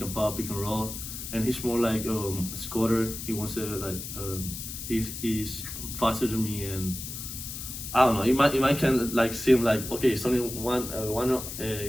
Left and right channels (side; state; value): left; noise; hiss, 8 dB below the sound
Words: and pop, pick and roll. And he's more like a scorer. He wants to like he's faster than me, and I don't know. It might kind of like seem like, okay, it's only one